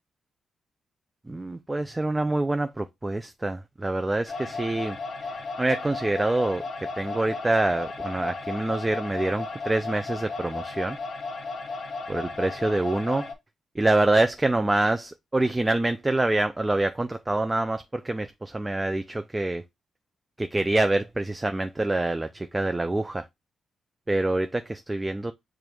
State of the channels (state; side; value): normal; both; correlation 0.97